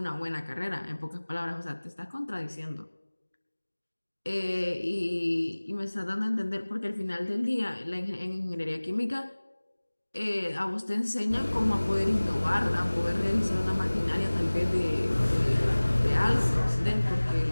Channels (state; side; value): inverted; both; correlation -1.00